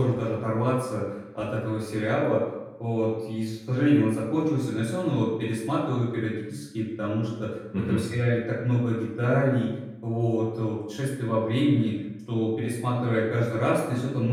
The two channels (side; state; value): both; identical; correlation 1.00